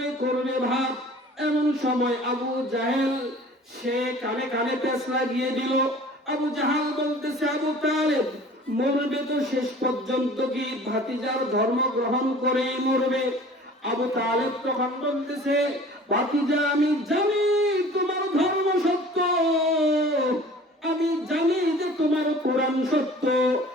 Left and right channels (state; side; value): normal; both; correlation 0.46